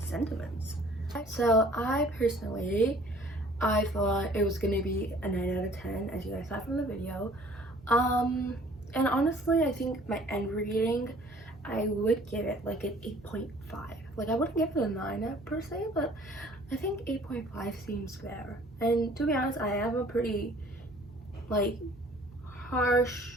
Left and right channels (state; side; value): normal; both; correlation 0.54